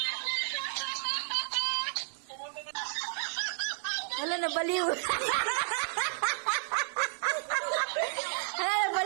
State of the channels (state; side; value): silent; left; digital silence